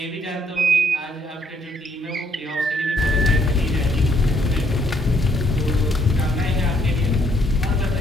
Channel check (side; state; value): both; normal; correlation 0.69